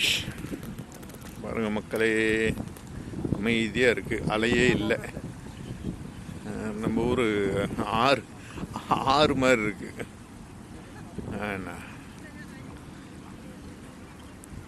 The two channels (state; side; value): identical; both; correlation 1.00